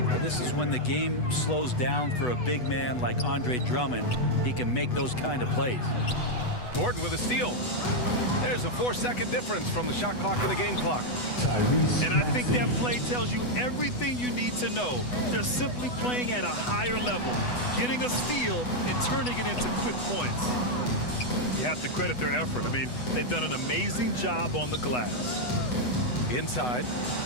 This is when the game slows down for a big man like Andre Drummond. He can make those kind of plays. Gordon with a steal. There's a 4-second difference from the shot clock to the game clock. And I think that play tells you everything you need to know. They're simply playing at a higher level, getting a steal and turning it into quick points. You have to credit their effort. I mean, they've done an amazing job on the glass. Inside,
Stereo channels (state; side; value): late; right; 8.1 ms